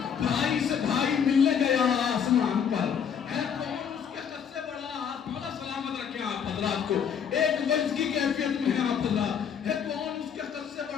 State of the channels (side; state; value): right; quieter; 7.6 dB